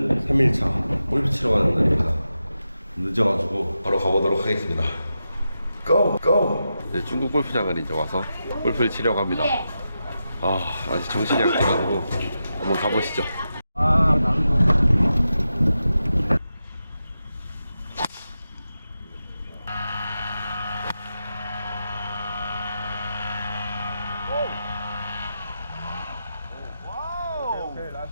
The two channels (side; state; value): both; inverted; correlation -0.89